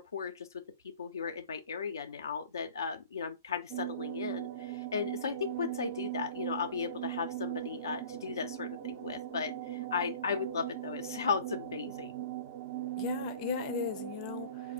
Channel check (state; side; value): inverted; both; correlation -0.44